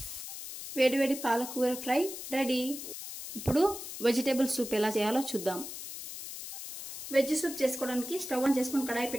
వేడివేడి పాలకూర ఫ్రై రెడీ. ఇప్పుడు వెజిటేబుల్ సూప్ ఎలా చేయాలో చూద్దాం. వెజ్ సూప్ చేసుకోవడానికి స్టవ్ ఆన్ చేసుకుని కడాయి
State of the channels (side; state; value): left; noise; hiss, 9 dB below the sound